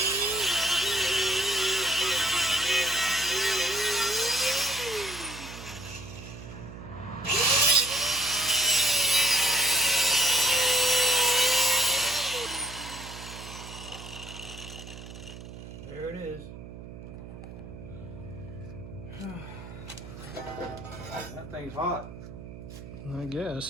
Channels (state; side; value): noise; right; hum, 13 dB below the sound